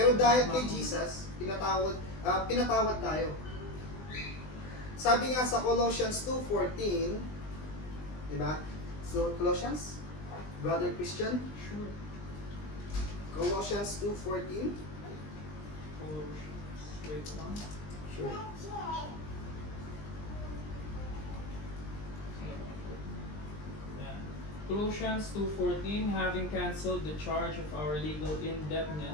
dahil kay Jesus, pinatawad tayo. Sabi nga sa Colossians 2:14, di ba? So, Colossians? Brother Christian? Sure. Colossians 2:14. Colossians. Wait lang. Sure. Yeah. Colossians 2:14, having cancelled the charge of our legal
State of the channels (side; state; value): right; late; 20 ms